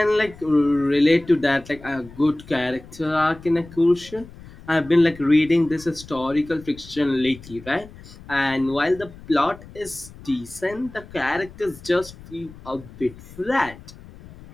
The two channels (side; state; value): left; noise; rumble, 19 dB below the sound